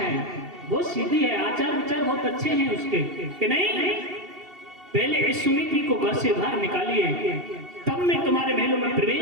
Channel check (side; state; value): left; late; 2.7 ms